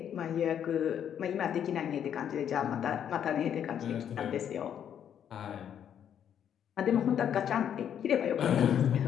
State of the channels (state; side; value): quieter; right; 9.1 dB